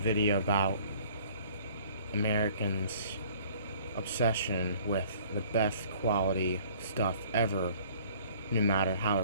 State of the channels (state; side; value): inverted; both; correlation -0.53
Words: about Americans' obsession with the best quality stuff ever, no matter how